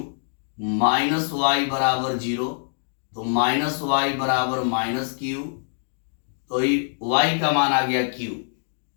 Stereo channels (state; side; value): silent; right; digital silence